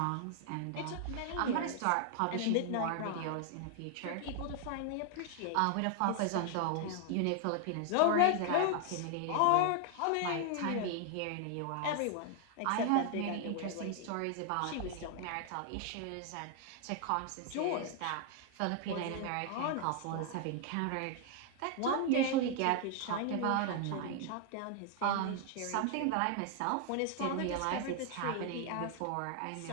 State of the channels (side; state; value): both; different; correlation 0.00